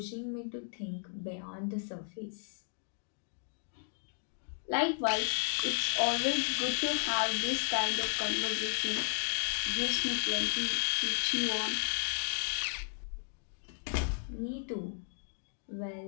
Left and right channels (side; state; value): right; silent; digital silence